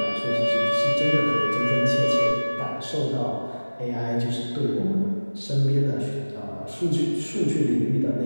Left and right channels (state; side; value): inverted; both; correlation -1.00